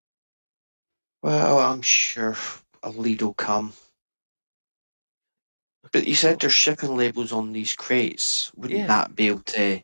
Well, I'm sure a lead will come. But you said there's shipping labels on these crates. Wouldn't Yeah. that be able to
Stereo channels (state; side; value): inverted; both; correlation -1.00